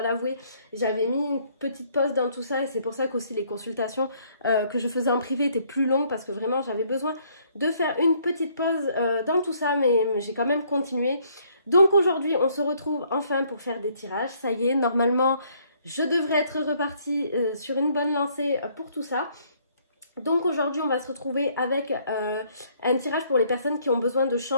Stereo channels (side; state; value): both; inverted; correlation -0.65